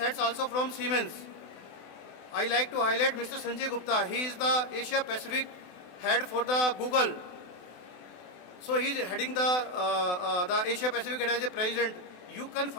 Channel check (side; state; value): right; late; 25 ms